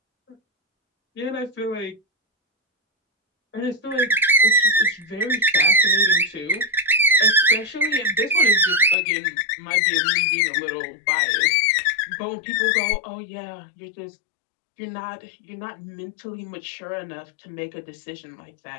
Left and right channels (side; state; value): right; drops out; at 9.0 s